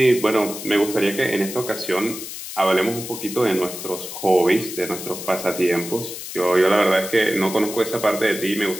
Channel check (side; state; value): left; noise; hiss, 10 dB below the sound